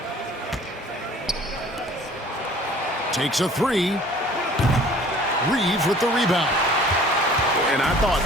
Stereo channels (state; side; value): normal; both; correlation 0.50